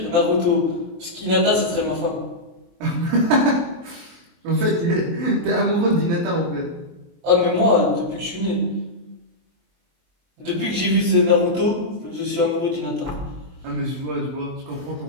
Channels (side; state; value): left; late; 23 ms